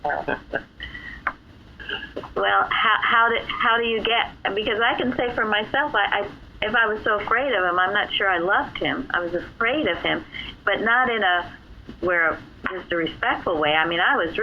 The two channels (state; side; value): identical; both; correlation 1.00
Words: so. Well, how do you get? Because I can say for myself, if I was so afraid of him, I'm not sure I loved him. I was afraid of him, but not in just a respectful way. I mean, I was